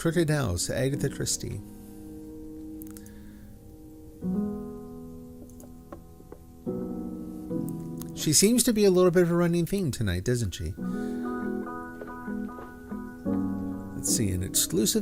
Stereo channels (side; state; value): both; identical; correlation 1.00